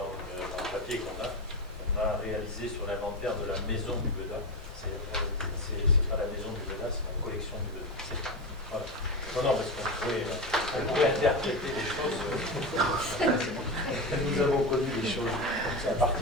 le papier qu'on a réalisé sur l'inventaire de la maison du Beda. C'est pas la maison du Beda, c'est la collection du Beda. Voilà. Non, parce qu'on pourrait interpréter les choses. Nous avons connu des choses à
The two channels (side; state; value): both; normal; correlation 0.19